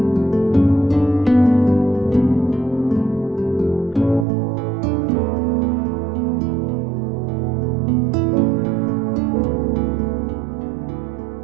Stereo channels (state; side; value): drops out; left; at 4.2 s